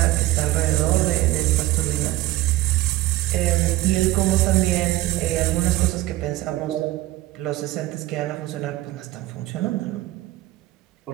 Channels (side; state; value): left; quieter; 16.7 dB